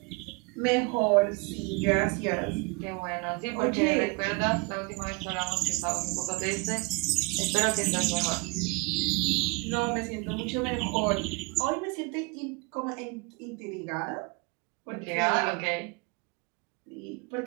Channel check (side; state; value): left; quieter; 28.2 dB